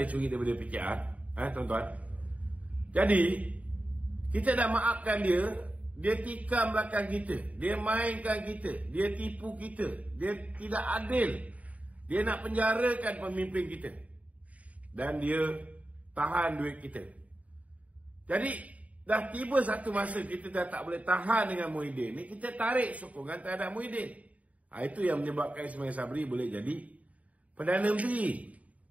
curi daripada PKR. Tuan-tuan. Jadi kita dah maafkan dia. Dia tikam belakang kita, dia mainkan kita, dia tipu kita, dia tidak adil, dia nak penjarakan pemimpin kita, dan dia tahan duit kita. Jadi dah tiba satu masa kita dah tak boleh tahan dengan Muhyiddin ni, kita tarik sokongan terhadap Muhyiddin. Itu yang menyebabkan Ismail Sabri boleh jadi Perdana Menteri.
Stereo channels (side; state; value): left; late; 0.069 ms